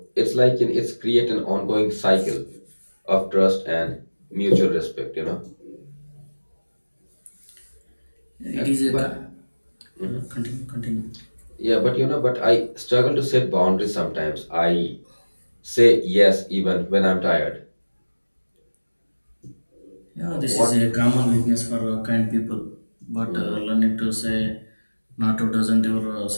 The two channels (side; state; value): both; inverted; correlation -1.00